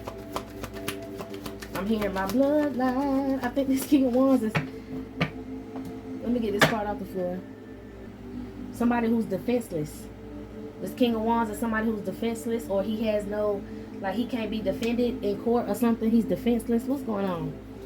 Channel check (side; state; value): both; identical; correlation 1.00